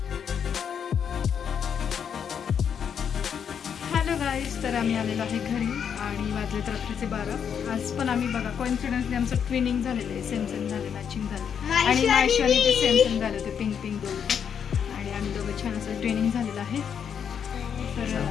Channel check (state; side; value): quieter; right; 7.7 dB